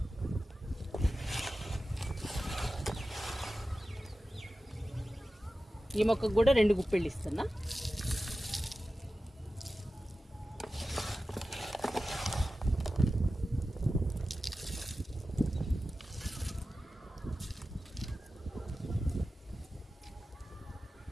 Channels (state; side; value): normal; both; correlation 0.94